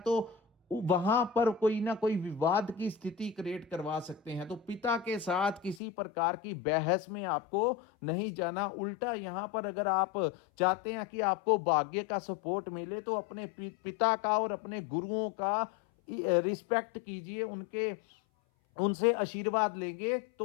वहां पर कोई ना कोई विवाद की स्थिति क्रिएट करवा सकते हैं। तो पिता के साथ किसी प्रकार की बहस में आपको नहीं जाना। उल्टा यहां पर अगर आप चाहते हैं कि आपको भाग्य का सपोर्ट मिले तो अपने पिता का और अपने गुरुओं का रिस्पेक्ट कीजिए, उनसे आशीर्वाद लेंगे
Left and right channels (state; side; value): drops out; right; at 5.8 s